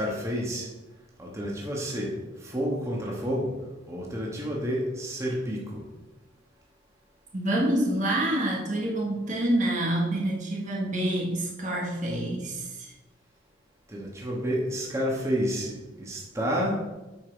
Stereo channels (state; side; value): normal; both; correlation 0.65